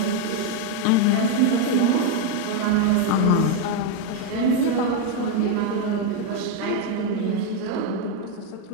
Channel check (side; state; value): both; different; correlation 0.01